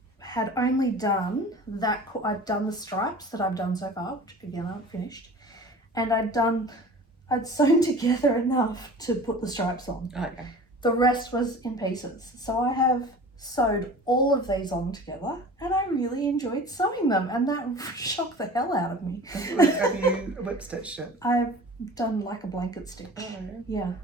had only done that. I'd done the stripes that I've done so far, which again I haven't finished, and I'd sewn together enough to put the stripes on. Okay. The rest was in pieces, so I have sewed all of these on together, and I really enjoyed sewing them, and that shocked the hell out of me. Have you whip stitched it? I've done like a blanket stitch. Oh, yeah.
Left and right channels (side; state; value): both; normal; correlation 0.40